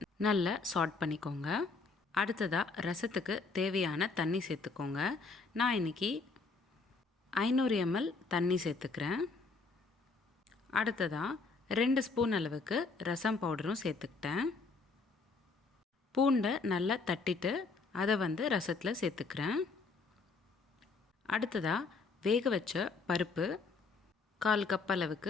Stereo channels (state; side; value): quieter; right; 4.2 dB